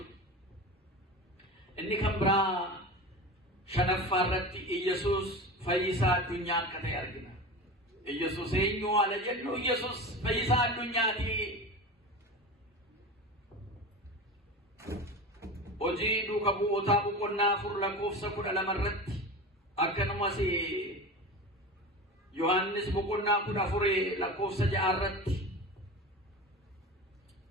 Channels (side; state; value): both; normal; correlation 0.29